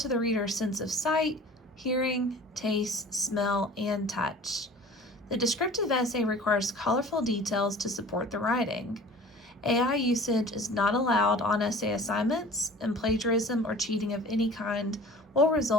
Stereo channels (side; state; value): both; normal; correlation 0.44